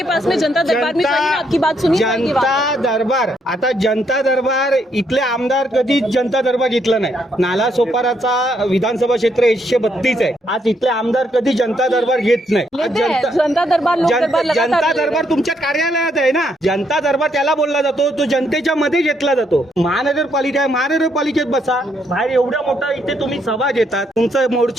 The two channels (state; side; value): normal; both; correlation 0.74